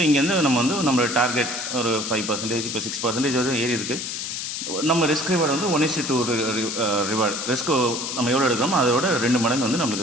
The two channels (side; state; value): left; noise; hiss, 4 dB below the sound